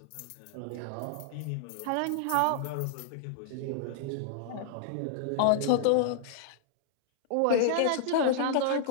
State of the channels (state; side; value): different; both; correlation -0.01